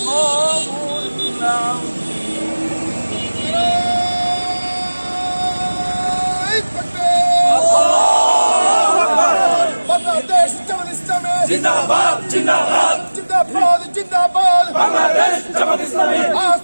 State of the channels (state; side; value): inverted; both; correlation -1.00